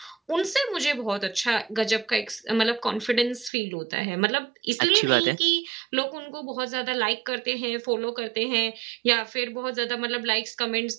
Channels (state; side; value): drops out; left; at 3.5 s